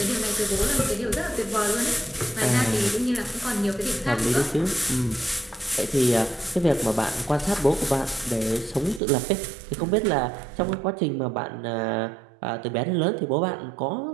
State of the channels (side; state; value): left; drops out; at 9.0 s